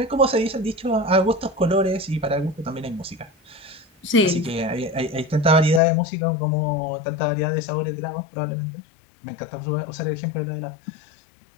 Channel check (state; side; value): drops out; right; at 5.8 s